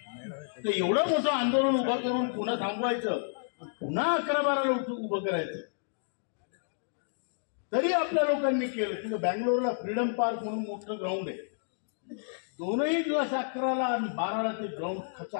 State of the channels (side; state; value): right; silent; digital silence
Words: तर एवढं मोठं आंदोलन उभं करून पुन्हा थांबवायचं, पुन्हा 11-12ला उभं करायचं, तरी आपल्या लोकांनी केलं। तिथं बँगलोरला फ्रीडम पार्क म्हणून मोठं ग्राउंड आहे, दोनही दिवस 11ला आणि 12ला ते ग्राउंड